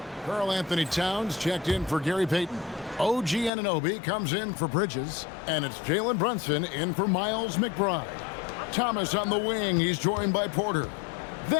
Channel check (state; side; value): drops out; right; at 3.5 s